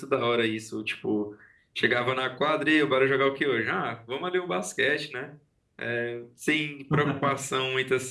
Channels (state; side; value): identical; both; correlation 1.00